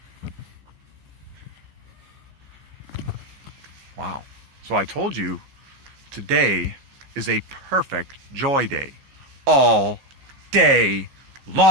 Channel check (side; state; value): left; late; 15 ms